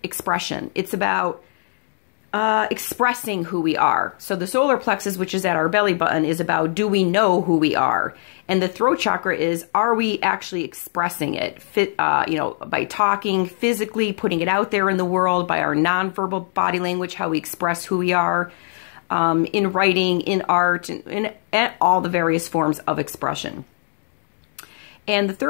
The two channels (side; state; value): right; silent; digital silence